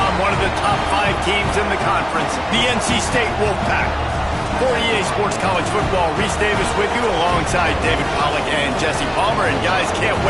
one of the top 5 teams in the conference, the NC State Wolfpack. For EA Sports College Football, Reese Davis with you alongside David Pollack and Jesse Palmer. And guys, can't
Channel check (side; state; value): both; identical; correlation 1.00